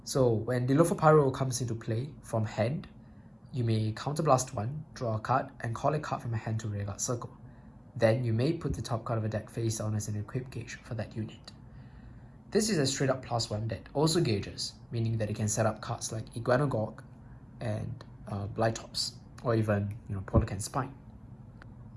So when Dilopho Pyro comes into play from hand, you may counterblast 1, draw a card, and call a card from a hand to rearguard circle. Then you may put the top card of a deck face down as an equip gauge for that unit. This is a straight up +1 that also gauges, meaning that it can set up cards like Iguanogorg and Blytops, or even Polecan Spine.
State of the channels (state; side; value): identical; both; correlation 1.00